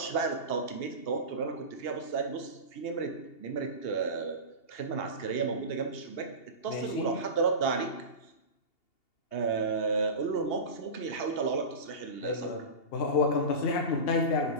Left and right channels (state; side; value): late; right; 2.8 ms